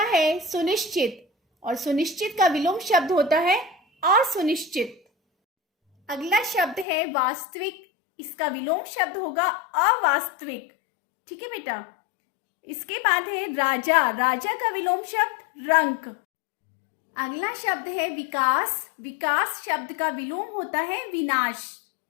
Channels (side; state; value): right; drops out; at 6.9 s